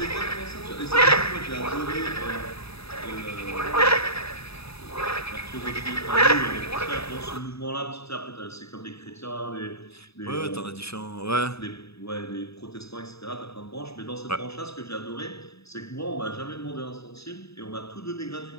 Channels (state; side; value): late; right; 0.78 ms